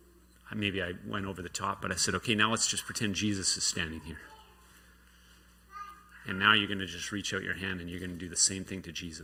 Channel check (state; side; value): identical; both; correlation 1.00